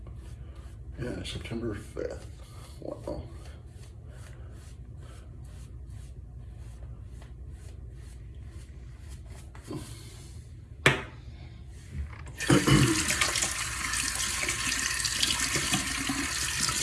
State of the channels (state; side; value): identical; both; correlation 1.00